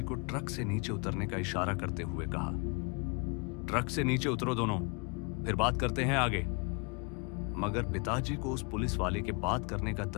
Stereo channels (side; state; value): right; quieter; 32.4 dB